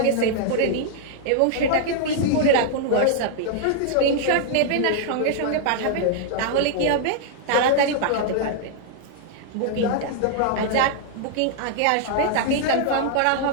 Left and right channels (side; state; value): both; different; correlation -0.01